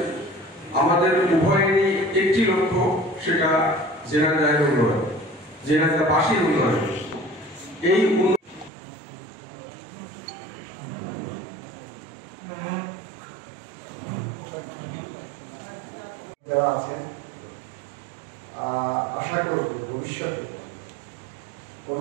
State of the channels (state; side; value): drops out; left; at 8.7 s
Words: আমাদের উভয়েরই একটি লক্ষ্য, সেটা জেনারেল উন্নয়ন, জেনারেলবাসীর উন্নয়ন। এই যারা আছে আশা করব ভবিষ্যতে